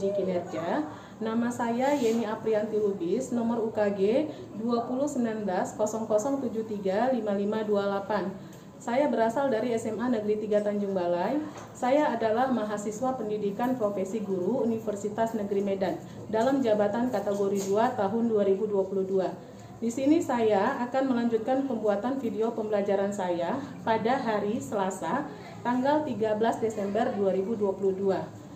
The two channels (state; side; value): identical; both; correlation 1.00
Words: kinerja. Nama saya Yeni Aprianti Lubis, nomor UKG 201900735528. Saya berasal dari SMA Negeri 3 Tanjung Balai. Saya adalah mahasiswa pendidikan profesi guru Universitas Negeri Medan dalam jabatan kategori 2 tahun 2022. Di sini saya akan melanjutkan pembuatan video pembelajaran saya pada hari Selasa, tanggal 13 Desember 2022.